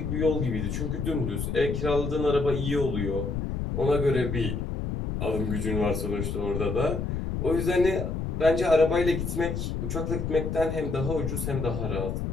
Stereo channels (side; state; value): left; noise; rumble, 3 dB below the sound